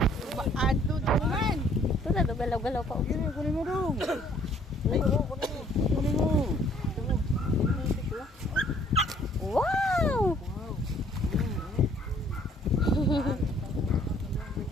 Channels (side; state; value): both; normal; correlation 0.60